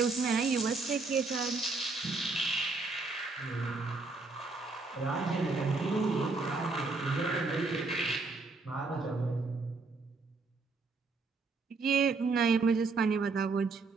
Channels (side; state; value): left; quieter; 3.9 dB